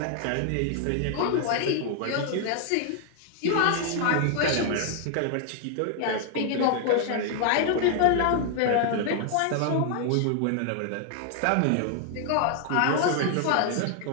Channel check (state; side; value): different; both; correlation 0.00